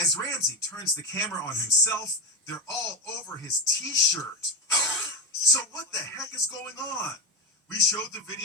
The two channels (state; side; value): normal; both; correlation 0.14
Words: Ramsey turns the camera on himself, they're all over his t-shirt. So what the heck is going on? We showed the